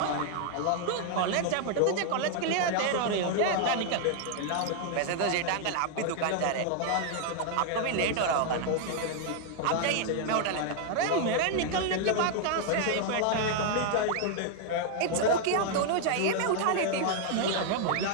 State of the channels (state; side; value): different; both; correlation 0.00